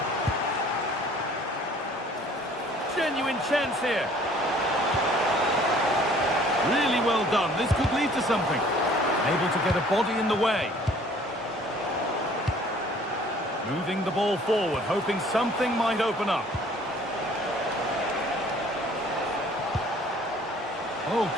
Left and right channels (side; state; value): both; normal; correlation 0.54